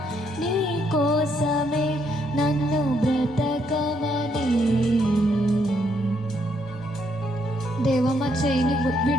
నీ కోసమే నన్ను బ్రతకమని. దేవా, మా చేయిని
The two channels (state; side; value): normal; both; correlation 0.73